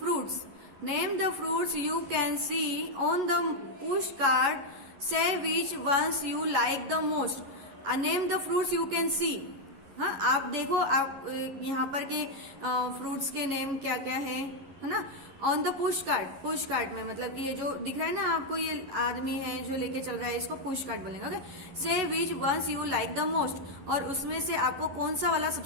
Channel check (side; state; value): left; late; 11 ms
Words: name the fruits you can see on the push card, say which ones you like the most. Name the fruits you can see. हाँ, आप देखो, आप यहाँ पर के फ्रूट्स के नेम क्या क्या है ना। ऑन द पुश कार्ट में मतलब कि ये जो दिख रहा है ना आपको, ये आदमी है जो लेके चल रहा है, इसको पुश कार्ट बोलेंगे। Okay, say which ones you like the most, और उसमें से आपको कौन सा वाला